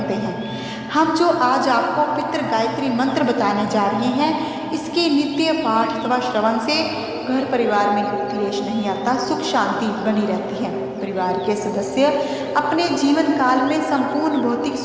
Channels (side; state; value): both; identical; correlation 1.00